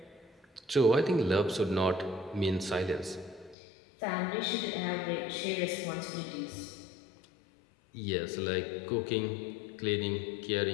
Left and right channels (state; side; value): drops out; right; at 3.6 s